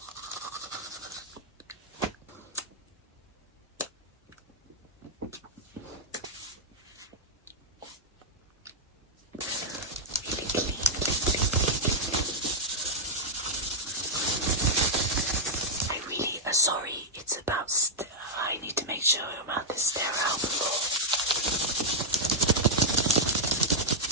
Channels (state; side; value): normal; both; correlation -0.07